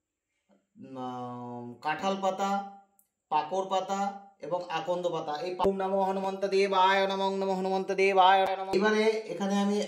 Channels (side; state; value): both; identical; correlation 1.00